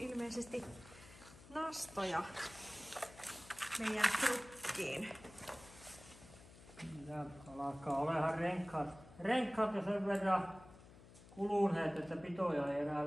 nastoja meidän trukkiin. Ja alkaa olemaan renkkaat jo sen verran kuluneet, että pitoja ei enää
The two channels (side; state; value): left; noise; hum, 20 dB below the sound